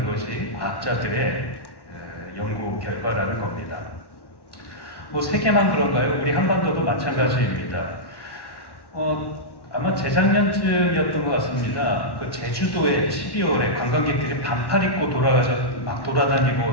것이 과학자들의 연구 결과라는 겁니다. 뭐 세계만 그런가요? 우리 한반도도 마찬가지입니다. 아마 재작년쯤이었던 것 같습니다. 그 제주도에 12월에 관광객들이 반팔 입고 막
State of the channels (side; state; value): right; late; 1.1 ms